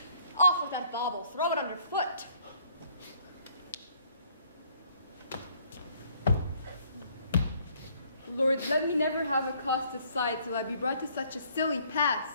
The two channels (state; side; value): inverted; both; correlation -0.63